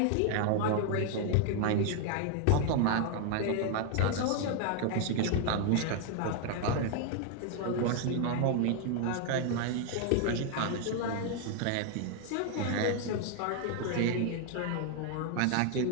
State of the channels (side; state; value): both; different; correlation 0.00